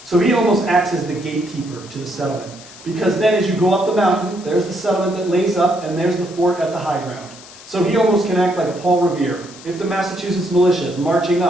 So he almost acts as the gatekeeper to the settlement. Because then as you go up the mountain, there's the settlement that lays up, and there's the fort at the high ground. So he almost can act like a Paul Revere. If the Massachusetts militia is marching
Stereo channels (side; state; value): left; noise; hiss, 19 dB below the sound